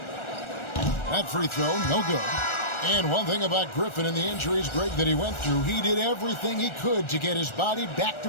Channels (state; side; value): late; right; 1.4 ms